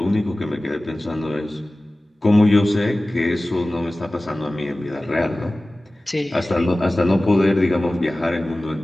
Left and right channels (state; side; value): normal; both; correlation 0.97